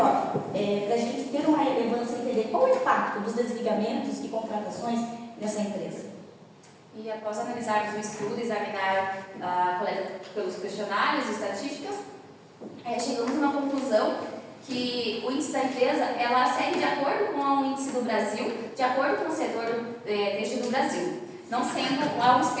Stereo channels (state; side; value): identical; both; correlation 1.00